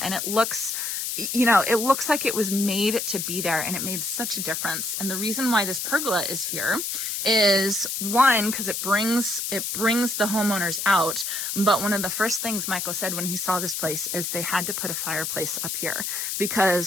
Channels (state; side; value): noise; left; hiss, 3 dB below the sound